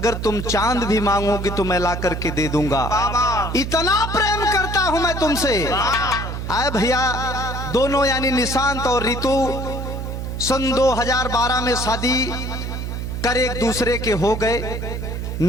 तुम चांद भी मांगोगी तो मैं ला करके दे दूंगा, इतना प्रेम करता हूं मैं तुमसे। आए भैया दोनों यानी निशांत और ऋतु सन 2012 में शादी कर एक दूसरे के हो गए।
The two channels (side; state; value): right; noise; hum, 5 dB below the sound